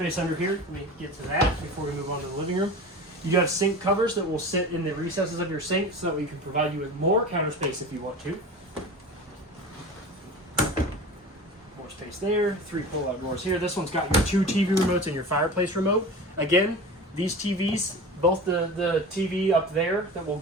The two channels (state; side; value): normal; both; correlation 0.34